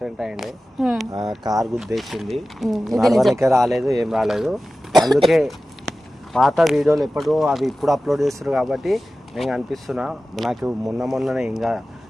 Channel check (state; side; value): normal; both; correlation 0.95